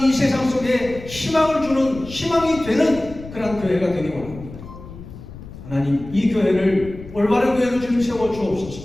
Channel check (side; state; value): left; noise; rumble, 15 dB below the sound